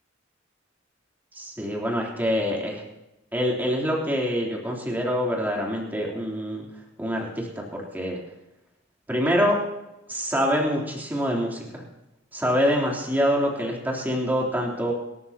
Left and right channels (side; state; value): both; normal; correlation 0.63